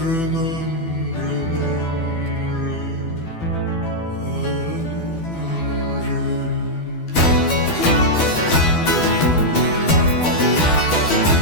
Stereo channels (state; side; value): late; right; 12 ms